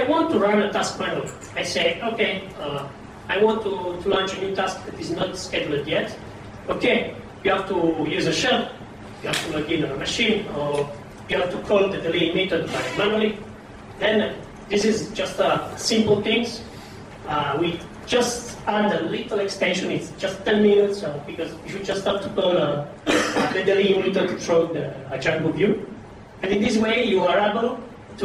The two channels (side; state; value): both; identical; correlation 1.00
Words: want to run a task manually, I say, okay, I want to launch a new task that is not scheduled yet. Okay, you have to use a shell, you have to log in on a machine, or you have to call the delay method manually. Then this is just simple things. We just add a little extension. It's just 10 minutes because you just have to call the delay method through the Django view. And in this way, you are able